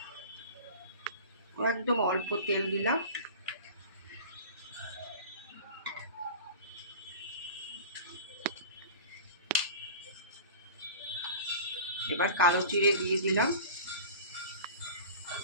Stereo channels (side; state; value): both; inverted; correlation -0.37